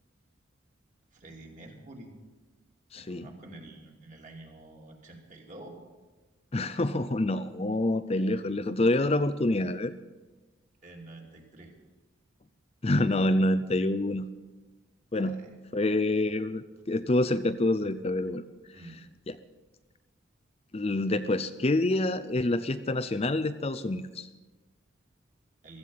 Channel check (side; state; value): both; normal; correlation 0.66